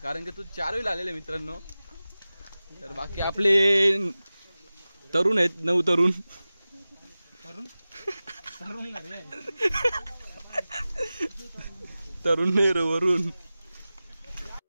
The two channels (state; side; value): inverted; both; correlation -0.96